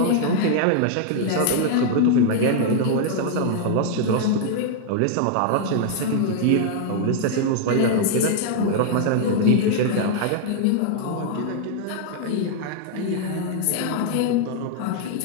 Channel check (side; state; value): both; different; correlation 0.00